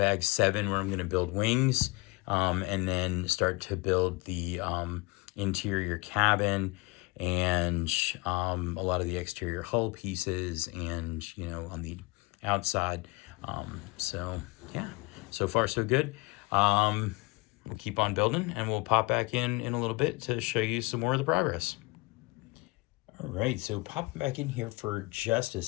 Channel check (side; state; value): right; quieter; 25.0 dB